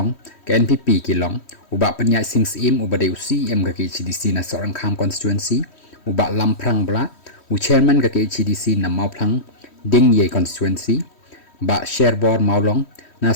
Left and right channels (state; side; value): late; right; 3.1 ms